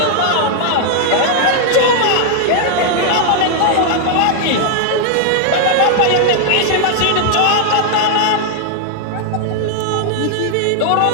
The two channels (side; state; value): both; different; correlation 0.00